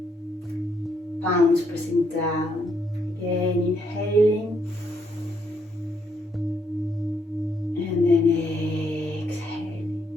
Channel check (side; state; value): both; normal; correlation 0.74